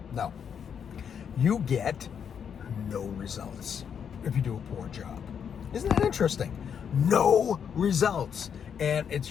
No. You get no results if you do a poor job. Isn't that interesting? No results. And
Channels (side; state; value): right; quieter; 7.6 dB